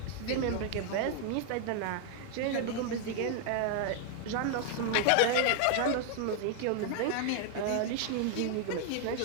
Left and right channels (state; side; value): different; both; correlation 0.00